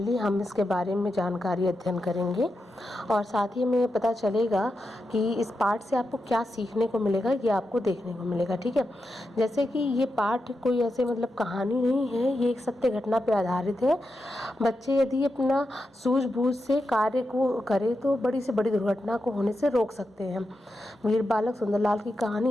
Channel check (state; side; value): normal; both; correlation 0.88